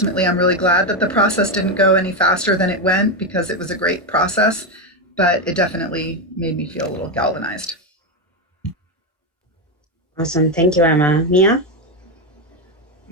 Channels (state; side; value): normal; both; correlation 0.09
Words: I'm really glad that the process didn't go any faster than it went, because it was a great process, but it definitely made me feel a little galvanized. Awesome. Thank you, Emma. Mia?